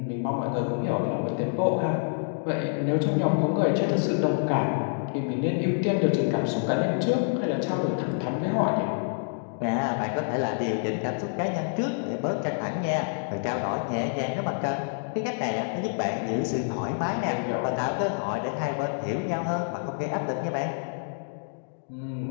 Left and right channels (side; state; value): right; silent; digital silence